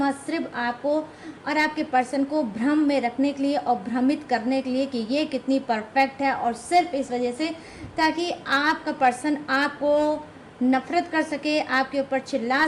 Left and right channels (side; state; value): both; identical; correlation 1.00